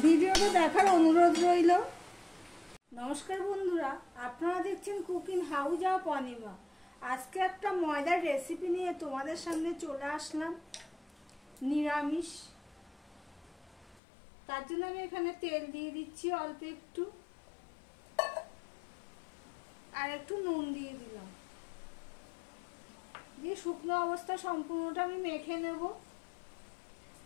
ভিডিওটা দেখার অনুরোধ রইল। নমস্কার বন্ধুরা, আপনারা দেখছেন কুকিং হাউস অফ অনিমা। আজকে একটা ময়দার রেসিপি নিয়ে তোমাদের সামনে চলে আসলাম, নিরামিষ। তার জন্য আমি এখানে তেল দিয়ে দিচ্ছি অল্প একটু, আর একটু নুন দিয়ে দিলাম, দিয়ে শুকনো অবস্থা সম্পূর্ণটা আমি মেখে নেব।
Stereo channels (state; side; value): drops out; right; at 14.0 s